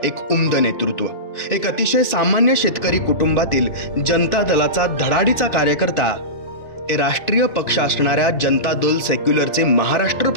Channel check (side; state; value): right; late; 2.6 ms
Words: एक उमद नेतृत्व, एक अतिशय सामान्य शेतकरी कुटुंबातील जनता दलाचा धडाडीचा कार्यकर्ता, ते राष्ट्रीय पक्ष असणाऱ्या जनता दल सेक्युलरचे महाराष्ट्र